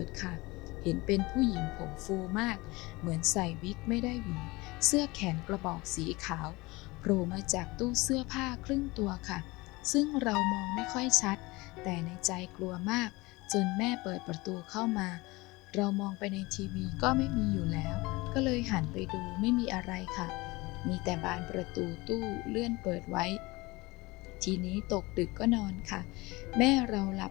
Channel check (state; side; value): quieter; right; 22.7 dB